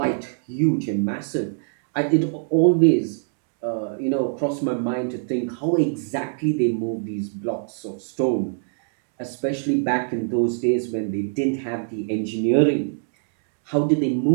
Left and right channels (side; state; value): left; silent; digital silence